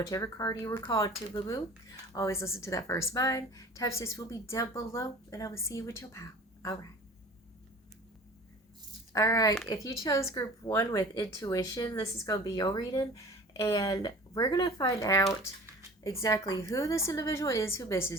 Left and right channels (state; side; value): normal; both; correlation 0.42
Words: card you were called to, boo boo. Always listen to that first mind. Timestamps will be down below, and I will see you with your pal. All right. All right, if you chose group one with intuition, this is going to be your reading, and we're going to find out exactly who this individual is who